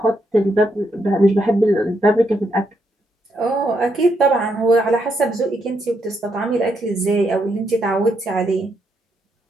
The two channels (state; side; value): normal; both; correlation 0.78